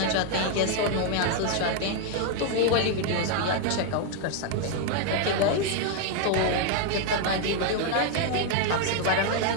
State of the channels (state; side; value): different; both; correlation 0.00